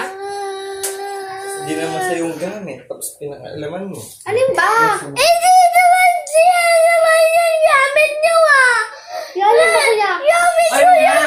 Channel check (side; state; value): both; identical; correlation 1.00